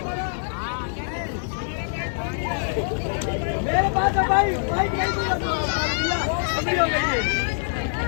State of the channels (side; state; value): right; silent; 62 dB below the other